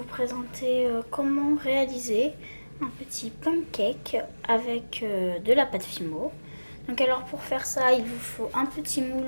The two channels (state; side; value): inverted; both; correlation -1.00